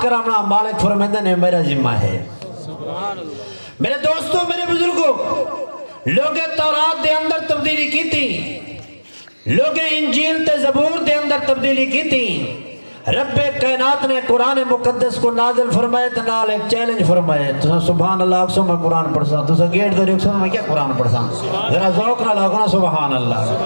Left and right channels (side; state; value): both; inverted; correlation -1.00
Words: کرانا مالک فرمائندہ نے میرا ذمہ ہے. میرے دوستوں، میرے بزرگوں، لوگ تورات دے اندر تبدیلی کی تھی، لوگ انجیل تے زبور دے اندر تبدیلی کی تھی. رب کائنات نے قرآن مقدس کو نازل فرمائے تو نال ایک چیلنج فرمائے. تو سبحان اللہ اکسو میں قرآن پڑھسا، تو سا گیٹ دو ریکسو میں کیا قرآن پڑھسا؟ ذرا ذوق نہ لگنا سبحان اللہ.